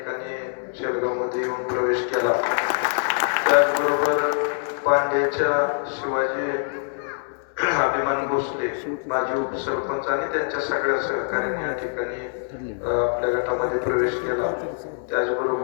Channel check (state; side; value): silent; right; digital silence